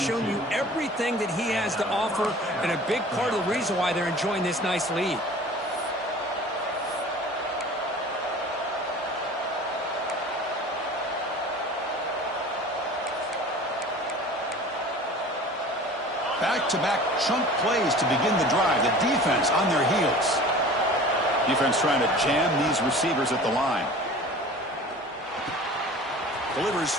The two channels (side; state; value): both; normal; correlation 0.42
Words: you everything that he has to offer, and a big part of the reason why they're enjoying this nice lead. Back-to-back chunk plays to begin the drive. The defense on their heels. Defense trying to jam these receivers at the line. Delivers